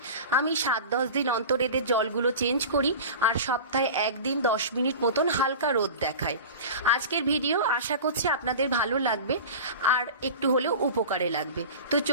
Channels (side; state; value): both; inverted; correlation -0.33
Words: আমি 7-10 দিন অন্তর এদের জলগুলো চেঞ্জ করি, আর সপ্তাহে 1 দিন 10 মিনিট মতন হালকা রোদ দেখায়। আজকের ভিডিও আশা করছি আপনাদের ভালো লাগবে আর একটু হলেও উপকারে লাগবে। তো